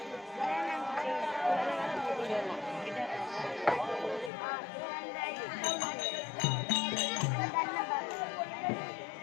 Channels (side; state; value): right; drops out; at 4.3 s